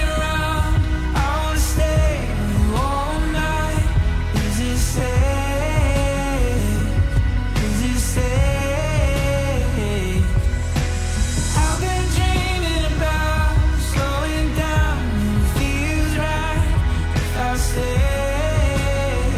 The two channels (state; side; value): identical; both; correlation 1.00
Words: around, I wanna stay with you all night. Is it safe? Is it safe? I've been dreaming about slowing down when it feels right. If I stay,